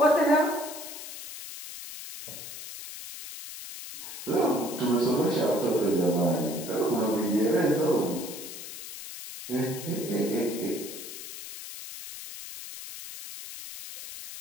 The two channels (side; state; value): left; noise; hiss, 11 dB below the sound